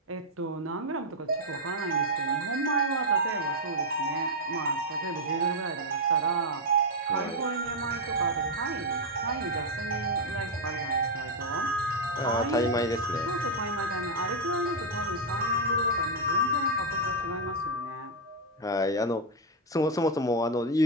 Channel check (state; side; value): normal; both; correlation 0.01